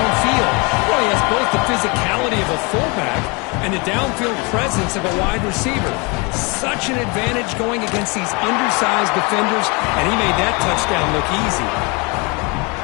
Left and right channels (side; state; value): right; quieter; 29.5 dB